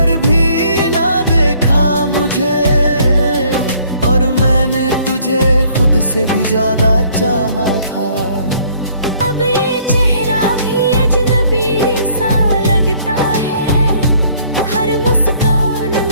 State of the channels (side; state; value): both; inverted; correlation -0.61